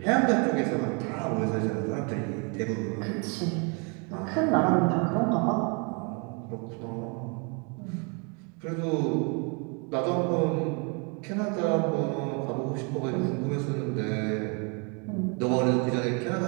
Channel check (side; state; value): left; quieter; 34.6 dB